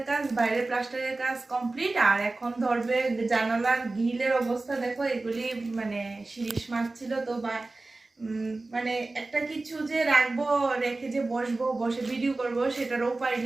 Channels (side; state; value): left; quieter; 3.2 dB